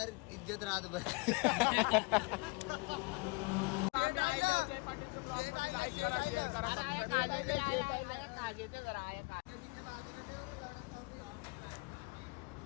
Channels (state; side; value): quieter; right; 27.7 dB